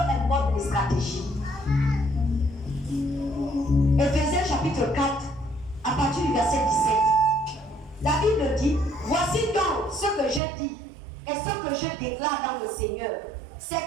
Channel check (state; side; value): drops out; left; at 10.4 s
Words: les stratégies. Éphésiens chapitre 4, à partir du verset 17. La Bible dit, voici donc ce que je dis et ce que je déclare dans le Seigneur.